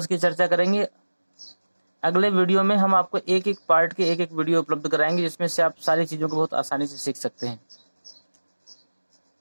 की चर्चा करेंगे। अगले वीडियो में हम आपको एक एक पार्ट के एक एक वीडियो उपलब्ध कराएंगे, जिसमें से आप सारी चीज़ों को बहुत आसानी से सीख सकते हैं।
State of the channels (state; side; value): inverted; both; correlation -1.00